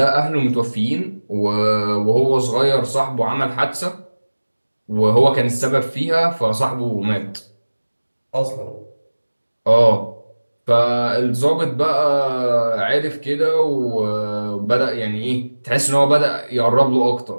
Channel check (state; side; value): inverted; both; correlation -1.00